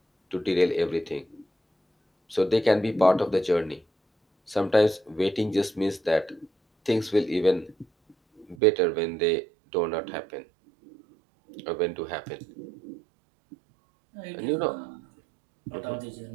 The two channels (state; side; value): drops out; left; at 8.6 s